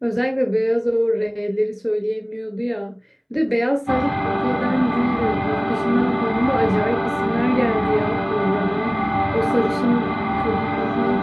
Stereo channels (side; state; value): both; identical; correlation 1.00